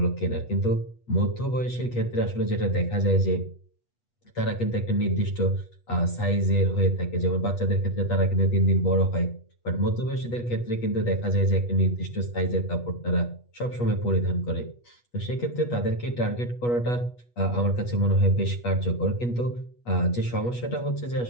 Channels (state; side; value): late; right; 8.3 ms